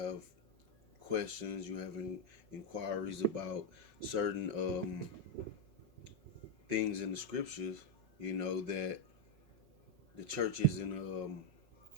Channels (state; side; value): late; left; 5.4 ms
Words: questions, you have inquiries about certain things in the scriptures, that the church isn't